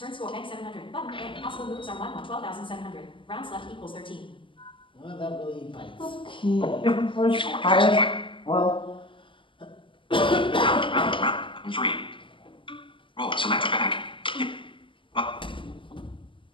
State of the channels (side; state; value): right; late; 0.25 ms